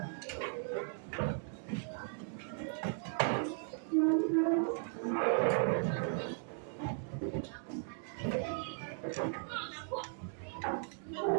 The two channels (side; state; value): left; silent; 53 dB below the other